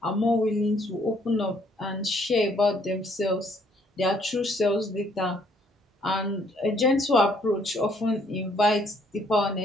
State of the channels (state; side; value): normal; both; correlation 0.65